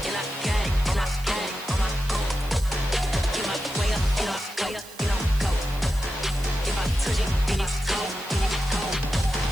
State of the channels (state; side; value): noise; right; hiss, 18 dB below the sound